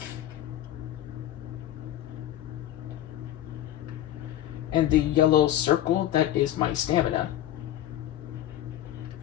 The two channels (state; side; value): quieter; right; 12.6 dB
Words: And the yellow circle, that is my stamina.